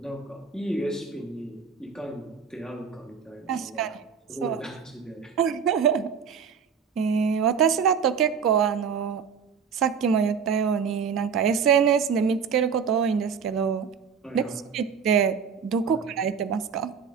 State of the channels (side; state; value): left; quieter; 6.6 dB